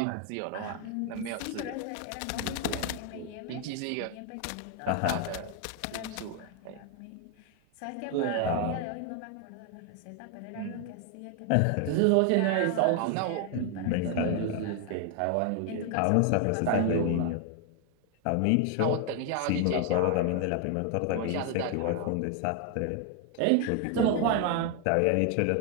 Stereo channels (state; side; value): different; both; correlation 0.00